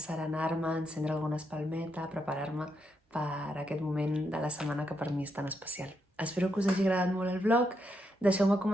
encendre alguna espalmeta, preparar-me per aquest moment de la setmana que per mi és tan especial. Espero que us hagi agradat molt el vlog. Deixeu-me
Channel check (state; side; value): normal; both; correlation 0.80